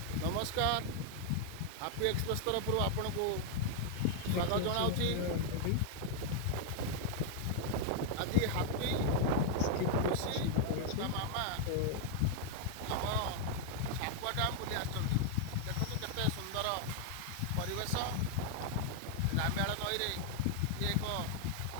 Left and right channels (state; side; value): different; both; correlation 0.00